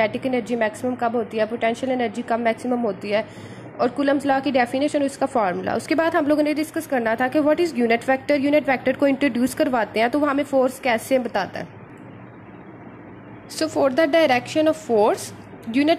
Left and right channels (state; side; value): identical; both; correlation 1.00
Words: एनर्जी मैक्सिमम कब होती है, पोटेंशियल एनर्जी कब मैक्सिमम होती है, और कूलम्स लॉ की डेफिनेशन और उसका फार्मूला। उसके बाद हम लोगों ने डिस्कस करना था कि what is unit vector. Unit vector को इंट्रोड्यूस करवाते हैं तो वो हमें फोर्स कैसे बताता है। So for the direction of force